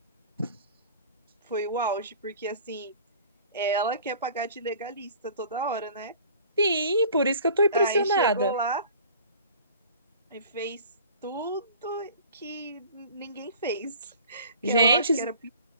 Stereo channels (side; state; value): both; inverted; correlation -0.46